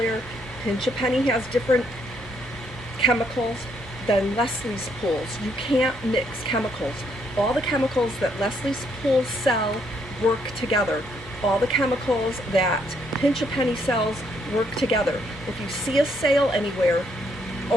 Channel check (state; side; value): normal; both; correlation 0.72